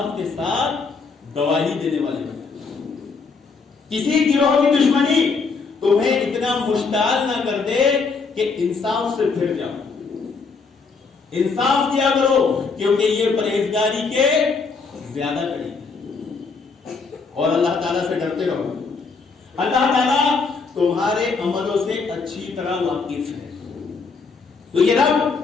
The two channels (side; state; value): right; quieter; 4.7 dB